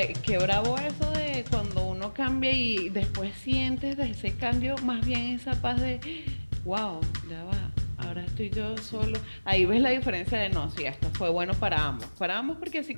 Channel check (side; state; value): both; inverted; correlation -1.00